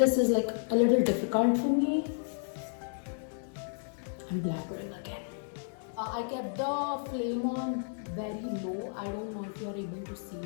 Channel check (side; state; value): right; silent; digital silence